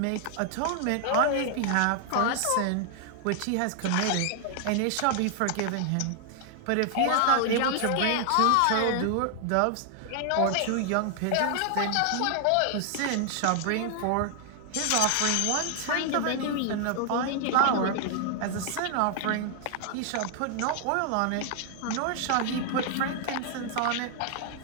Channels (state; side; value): different; both; correlation 0.00